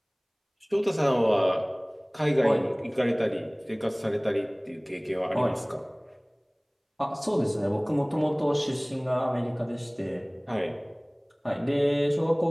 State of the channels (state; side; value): identical; both; correlation 1.00